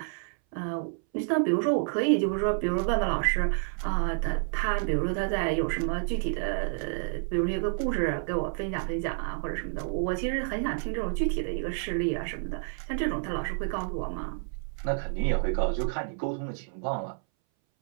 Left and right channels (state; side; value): silent; left; 58 dB below the other